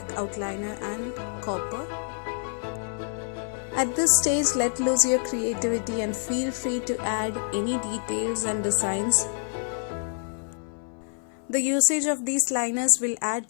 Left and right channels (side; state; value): right; silent; 60 dB below the other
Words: outliner and copper. At this stage, let loose your creativity and feel free to add any details and designs. The usage of these liners will